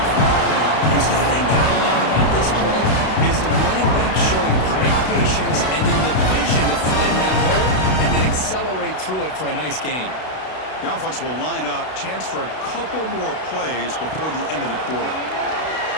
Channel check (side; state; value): right; late; 32 ms